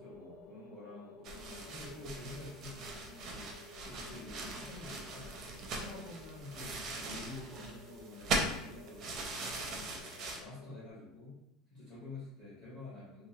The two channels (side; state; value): both; normal; correlation 0.37